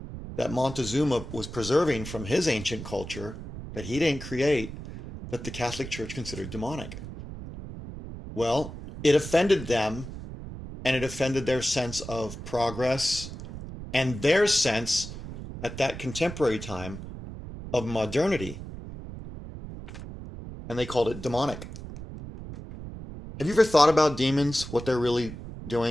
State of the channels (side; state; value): right; noise; rumble, 11 dB below the sound